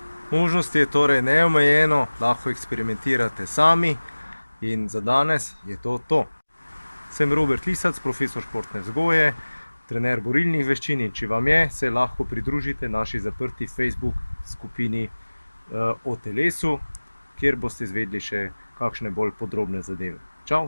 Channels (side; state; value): both; inverted; correlation -1.00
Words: Možnosti je torej neomejeno, lahko eksperimentirate sami in za danes je to to. Sem Robert Lisac, profesor športne vzgoje, trener borilnih veščin, in če vam je, se lahko pridružite naši zaprti Facebook skupini o telesu, kjer boste izvedeli še kakšne bolj podrobne zadeve. Čau,